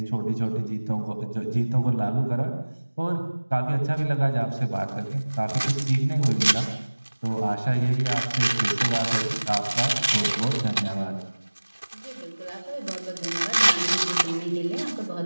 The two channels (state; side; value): inverted; both; correlation -1.00